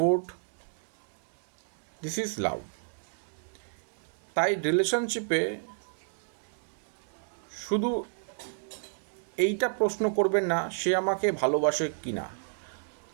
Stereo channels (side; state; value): left; silent; digital silence